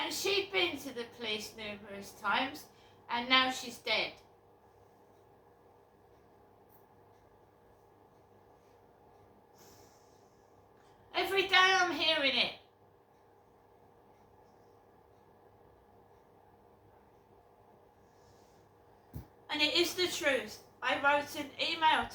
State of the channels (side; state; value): both; identical; correlation 1.00